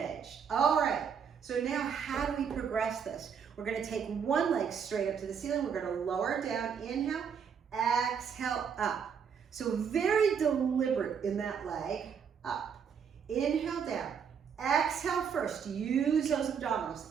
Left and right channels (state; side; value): quieter; left; 7.1 dB